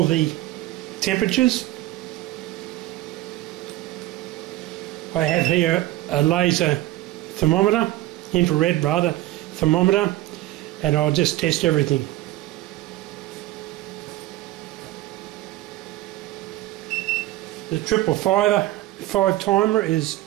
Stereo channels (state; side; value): quieter; left; 16.0 dB